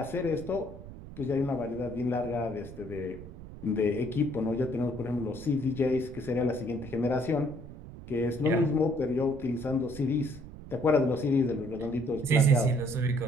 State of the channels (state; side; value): noise; right; rumble, 14 dB below the sound